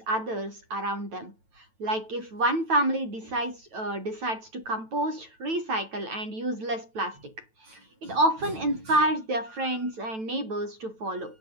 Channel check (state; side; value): late; left; 9.1 ms